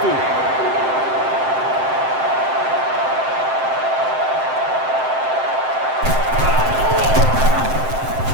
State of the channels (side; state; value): left; late; 7.7 ms